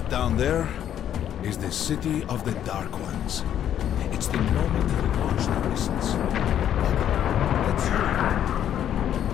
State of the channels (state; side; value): quieter; right; 10.3 dB